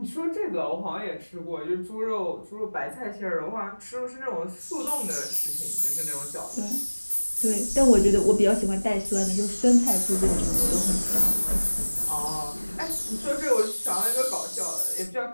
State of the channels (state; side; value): inverted; both; correlation -1.00